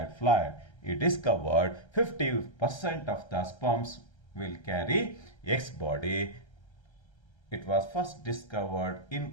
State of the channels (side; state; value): right; late; 1.3 ms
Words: it is covered 50% of the sperms will carry X body. It was first discovered in